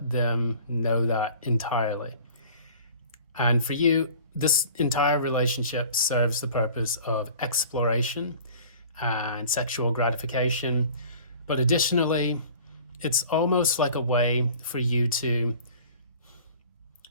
them know that entirely. And for you, this entire relationship serves the purpose of exploration and sexual gratification. But additionally, it's almost like a way for you to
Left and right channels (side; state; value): both; inverted; correlation -0.46